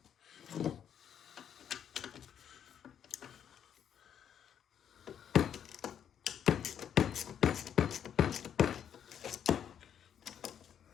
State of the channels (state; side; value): quieter; right; 8.9 dB